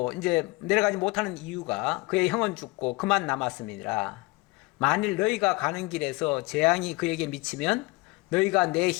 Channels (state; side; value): quieter; right; 23.8 dB